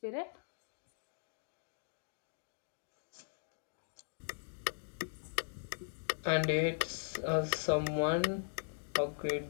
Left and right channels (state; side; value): silent; right; digital silence